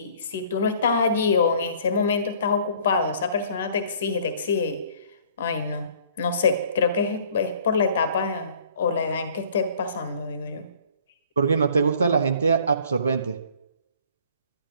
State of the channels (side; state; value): both; inverted; correlation -0.55